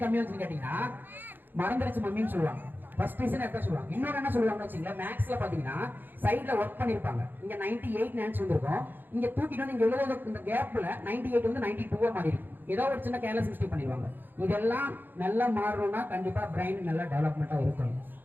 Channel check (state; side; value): late; left; 0.091 ms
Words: கம்மியா வந்துச்சுன்னு கேட்டீங்கன்னா மறந்துருச்சு மம்மின்னு சொல்லுவாங்க. ஃபர்ஸ்ட் ரீசன் என்ன சொல்லுவாங்க. இன்னொரு என்ன சொல்லுவாங்கன்னு வச்சுங்களேன், மேக்ஸ்ல பாத்தீங்கன்னா சைட்ல ஒர்க் பண்ணிருப்பாங்க. இங்க 98 ஆன்சர் வந்திருக்கும். இங்க தூக்கிட்டு வந்து இங்க எழுதுற இந்த கேப்ல 98 வந்து 92 மாறி இருக்கும். ஏதோ ஒரு சின்ன கேர்லெஸ் மிஸ்டேக் பண்ணிடுவாங்க. இதெல்லாம் நல்லா மாறணும்னா கண்டிப்பா பிரைன் நல்லா டெவலப்மெண்டா இருக்கணும்.